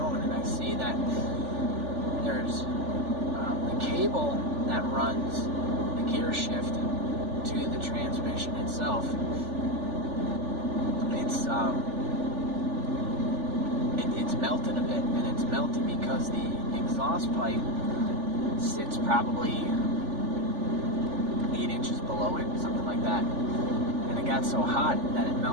and I see that there's the cable that runs gear shift to the transmission itself, it's melted a bit, and it's melted because the exhaust pipe sits probably 8 inches below it, something like that. And it got so hot that it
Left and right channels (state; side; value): late; left; 3.4 ms